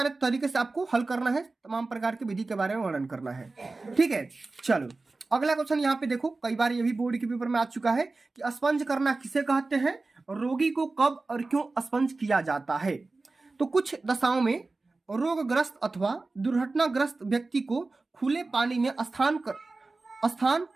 तरीके से आपको हल करना है, तमाम प्रकार की विधि के बारे में वर्णन करना है। ठीक है। चलो, अगला क्वेश्चन यहाँ पे देखो, कई बार ये भी बोर्ड के पेपर में आ चुका है कि स्पंज करना किसे कहते हैं, रोगी को कब और क्यों स्पंज किया जाता है। तो कुछ दशाओं में रोगग्रस्त अथवा दुर्घटनाग्रस्त व्यक्ति को खुले पानी में स्नान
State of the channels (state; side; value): quieter; left; 3.5 dB